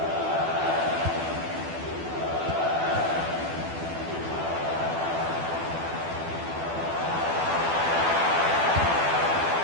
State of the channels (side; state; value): left; late; 12 ms